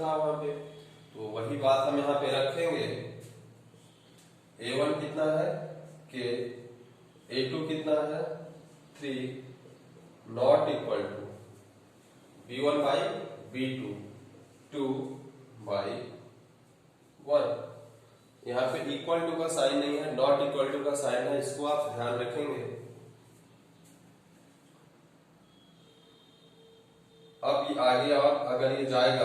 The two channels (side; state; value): both; identical; correlation 1.00